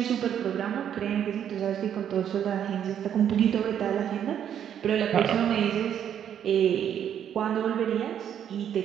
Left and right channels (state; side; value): quieter; left; 9.4 dB